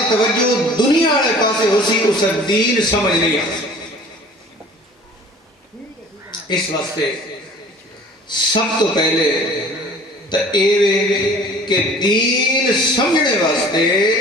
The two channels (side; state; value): both; normal; correlation 0.47